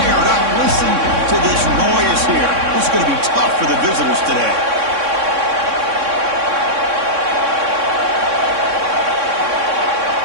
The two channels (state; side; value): late; left; 3.6 ms